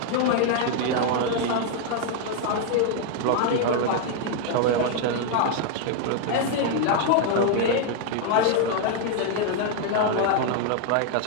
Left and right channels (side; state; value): both; different; correlation 0.00